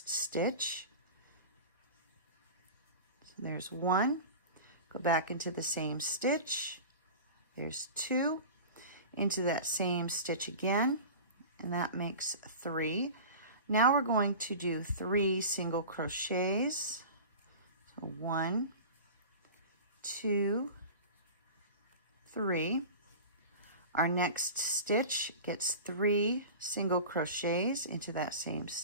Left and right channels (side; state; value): both; inverted; correlation -0.34